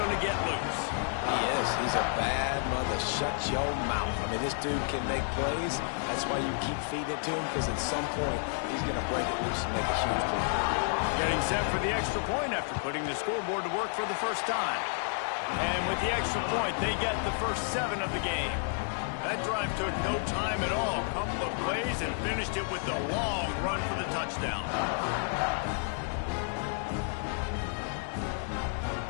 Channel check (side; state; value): right; silent; 57 dB below the other